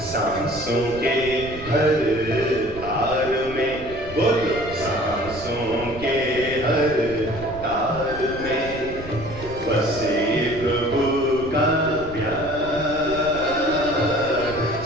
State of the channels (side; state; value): right; noise; rumble, 14 dB below the sound